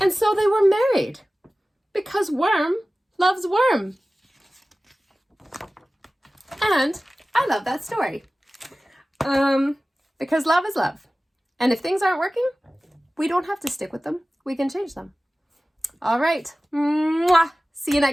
And so they were married because worm loves worm. And I love that story. Because love is love. And if things aren't working, we don't have to stick with them. We can change them. All right. Mwah. See you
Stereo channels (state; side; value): normal; both; correlation 0.97